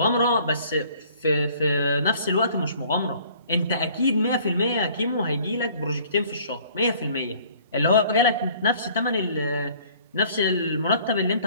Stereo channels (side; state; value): both; inverted; correlation -0.55